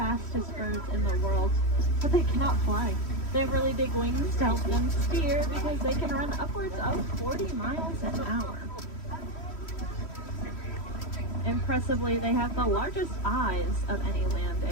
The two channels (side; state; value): right; late; 3.1 ms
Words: birds in the world, but they cannot fly. They have really big wings to help them steer because they can run upwards of 40 miles an hour. Impressively, they have the largest eyes of any land